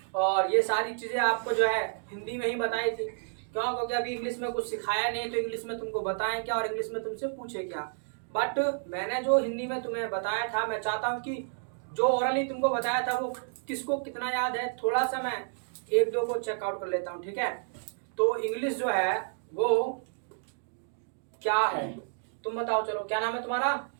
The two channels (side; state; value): left; silent; digital silence